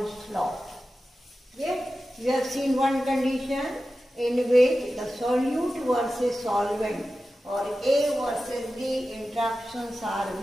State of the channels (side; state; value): both; normal; correlation 0.93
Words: law. Okay? We have seen one condition in which the solute versus solvent or A versus B interactions are